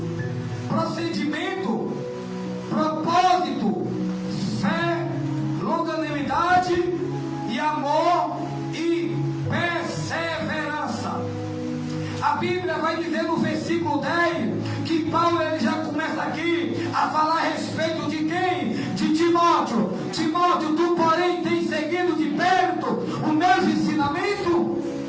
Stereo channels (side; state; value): both; identical; correlation 1.00